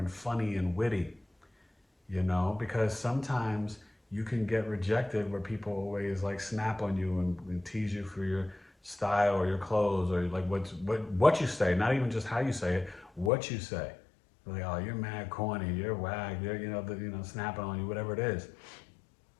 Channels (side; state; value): right; drops out; at 13.3 s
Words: funny and witty, because sometimes you can get rejected where people always like snap on you and tease you for your style or your clothes, or like what you say, not even just how you say it, what you say. Like, oh, you're mad corny, you're whack, you're, snapping on you, whatever it is.